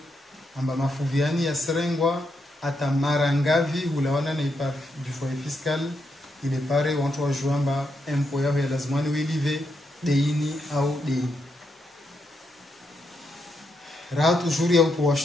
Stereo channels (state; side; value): normal; both; correlation 0.81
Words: amba mafuvu yani ya serengwa ata marangavi hulawana na i par du foyer fiscal ile pare wantu wajuamba empo yao ya lazimani wilive deini au deini rahat ujuri au